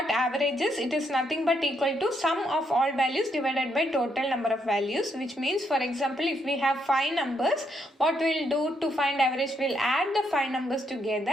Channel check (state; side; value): normal; both; correlation 0.76